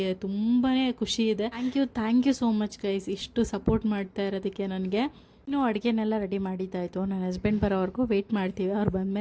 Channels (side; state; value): both; identical; correlation 1.00